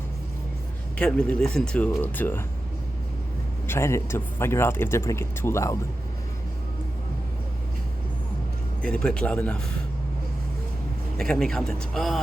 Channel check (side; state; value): both; normal; correlation 0.92